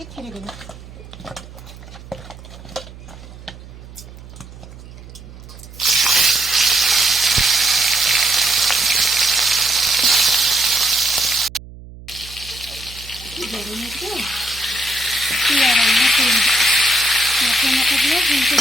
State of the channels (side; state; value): right; noise; hum, 17 dB below the sound